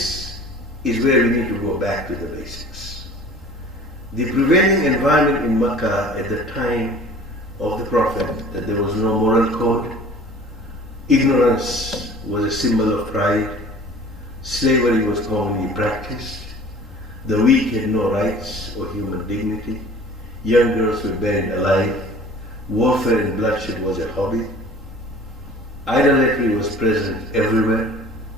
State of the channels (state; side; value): normal; both; correlation 0.46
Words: is where we need to go back to the basics. The prevailing environment in Makkah at the time of the Prophet, that there was no moral code, ignorance was a symbol of pride, slavery was commonly practiced, the weak had no rights or human dignity, young girls were buried alive, warfare and bloodshed was a hobby, idolatry was present everywhere.